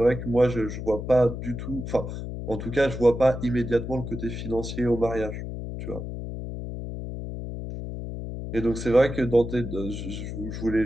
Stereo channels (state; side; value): noise; left; hum, 7 dB below the sound